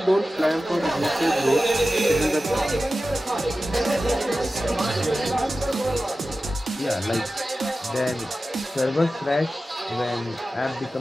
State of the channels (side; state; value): both; normal; correlation 0.94